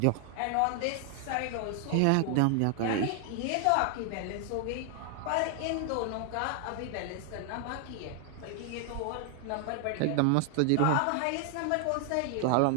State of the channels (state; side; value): different; both; correlation 0.00